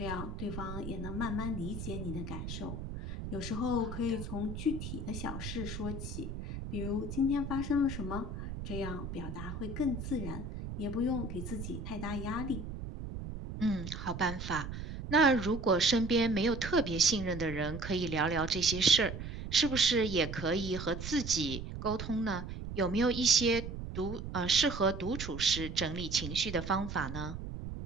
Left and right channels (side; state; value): right; noise; rumble, 7 dB below the sound